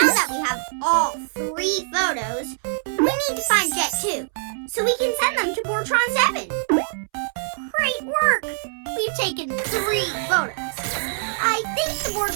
we have all 3 photos, we need to find Jet 2, so we can send them to Bortron 7. Great work! We've taken 3 photos. I think the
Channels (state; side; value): silent; left; 63 dB below the other